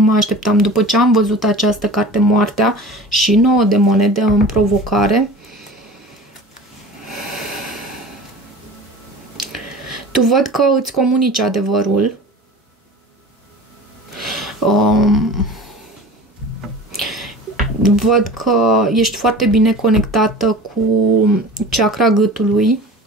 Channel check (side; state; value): both; normal; correlation 0.38